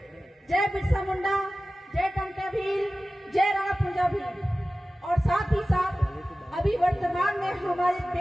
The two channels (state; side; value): normal; both; correlation 0.96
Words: जय बिरसा मुंडा, जय टंका भील, जय राणा पूजा भील। और साथ ही साथ अभी वर्तमान में हमारे